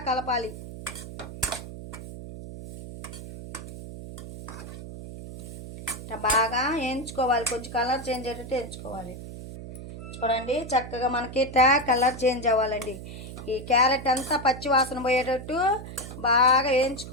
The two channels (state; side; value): noise; right; hum, 11 dB below the sound